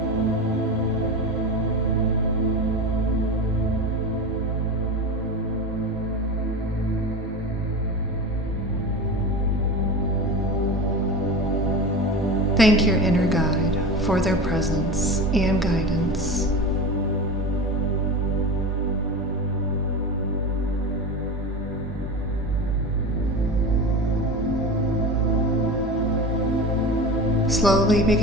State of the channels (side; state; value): both; normal; correlation 0.27